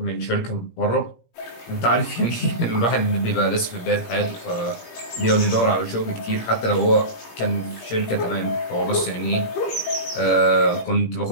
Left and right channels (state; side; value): late; right; 17 ms